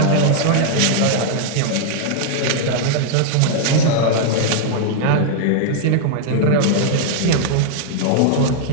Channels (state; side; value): different; both; correlation -0.01